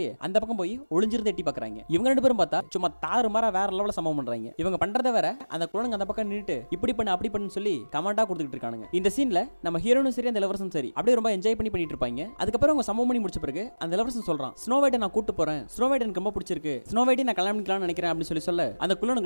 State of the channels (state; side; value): inverted; both; correlation -1.00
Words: அந்த பக்கம் போய் ஒளிஞ்சிருந்து எட்டி பாக்குறாங்க. இவங்க 2 பேரும் பார்த்தா சும்மா தாறுமாறா வேற லெவல்ல சம்பவம் பண்றாங்க. இவங்க பண்றத வேற அந்த குழந்தைங்க அந்த பக்கம் நின்னுட்டு இப்படி பண்ணு அப்படி பண்ணு சொல்லி கமெண்டா கொடுத்துட்டு இருக்கானுங்க. இந்த சீன்ல நம்ம ஹீரோனும் சரி அந்த இளவரசன் சரி அப்படியே ரொம்ப என்ஜாய் பண்ணிட்டு இருப்பாங்க. அதுக்கப்புறம் அவங்க சம்பவம் பண்ணி முடிச்ச பிறகு அந்த இளவரசன் சொல்றான் ஸ்னோ ஒயிட்டை நான் கூட்டு போறேன், ஸ்னோ ஒயிட் எனக்கு ரொம்ப பிடிச்சிருக்கு, ஸ்னோ ஒயிட்டை நான் கல்யாணம் பண்ணிக்கலாம்னு நினைக்கிறேன் அப்படின்னு சொல்ல அந்த